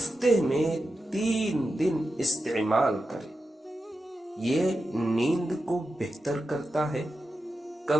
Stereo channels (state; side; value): normal; both; correlation 0.90